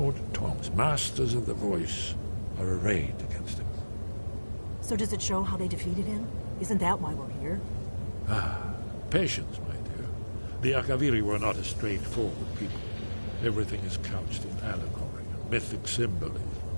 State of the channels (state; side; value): inverted; both; correlation -1.00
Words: Tongs, masters of the voice, are arrayed against him. So does it show how they defeated him? Isn't that why we're here? Patience, my dear. The Akaviri were not a straightforward people. Everything is couched in allegory and mythic symbolism.